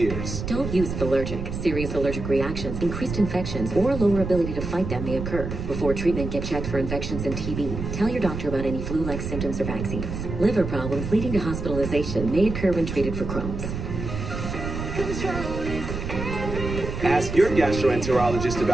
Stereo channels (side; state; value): right; noise; rumble, 5 dB below the sound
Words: Don't use Allergic. Serious allergic reactions, increased infections, or lower ability to fight them may occur. Before treatment, get checked for infections and TB. Tell your doctor about any flu-like symptoms or vaccines. Liver problems leading to hospitalization may occur when treated for Crohn's. Ask your gastroenterologist